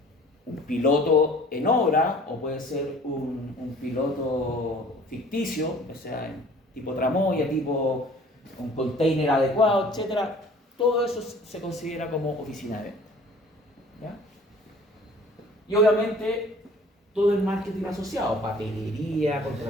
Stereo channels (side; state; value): both; normal; correlation 0.50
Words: un piloto en obra o puede ser un piloto ficticio, o sea, tipo tramoya, tipo un container adecuado, etc. Todo eso se considera como oficina de venta. ¿Ya? Y obviamente todo el marketing asociado, papelería,